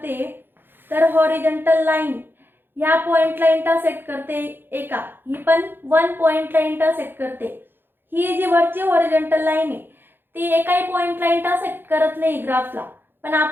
तर हॉरिझॉन्टल लाईन ह्या पॉइंटला इंटरसेक्ट करते एका, ही पण 1 पॉइंटला इंटरसेक्ट करते. ही जी वरची हॉरिझॉन्टल लाईन आहे ती एकाही पॉइंटला इंटरसेक्ट करत नाही ग्राफला, पण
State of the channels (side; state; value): left; late; 0.10 ms